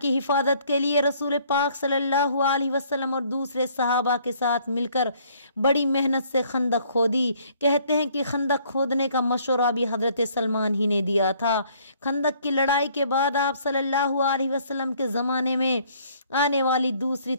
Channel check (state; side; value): inverted; both; correlation -0.61